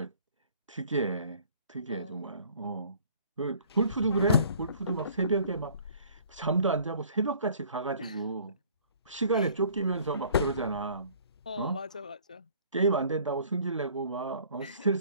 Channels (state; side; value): inverted; both; correlation -0.53